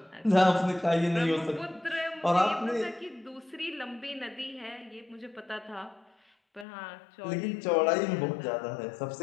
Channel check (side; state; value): right; drops out; at 6.7 s